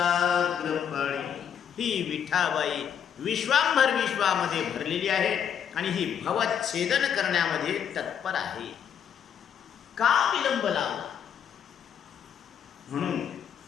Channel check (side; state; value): right; quieter; 8.4 dB